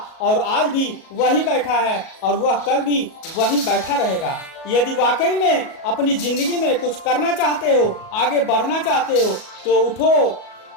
और आज भी वही बैठा है और वह कल भी वही बैठा रहेगा। यदि वाकई में अपनी जिंदगी में कुछ करना चाहते हो, आगे बढ़ना चाहते हो, तो उठो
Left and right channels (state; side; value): late; right; 37 ms